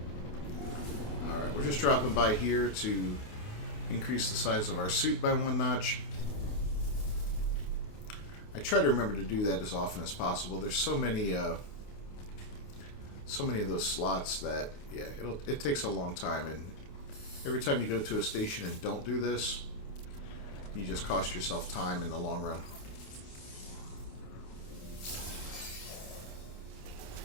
Alright, we're just dropping by here to increase the size of our suit by 1 notch. I try to remember to do that as often as possible. There's so many of those slots that, yeah, it takes a long time, and every time you go to a station and don't do this, you just cost yourself time in the long run.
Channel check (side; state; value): right; late; 28 ms